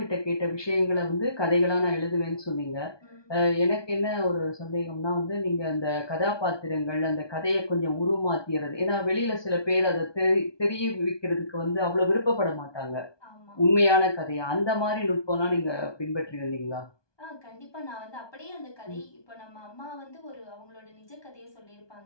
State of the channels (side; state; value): right; late; 1.2 ms